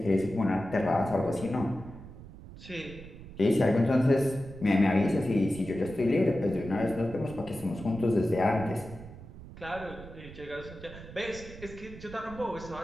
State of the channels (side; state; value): right; noise; rumble, 15 dB below the sound